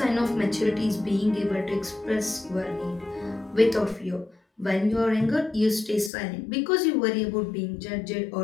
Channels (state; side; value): drops out; right; at 6.1 s